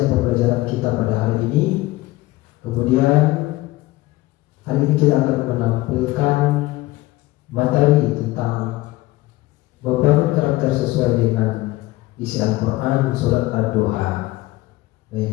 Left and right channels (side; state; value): right; quieter; 18.6 dB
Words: pembelajaran kita pada hari ini. Kemudian hari ini kita akan menampilkan materi tentang membangun karakter sesuai dengan isi Al-Quran surat ad-duha.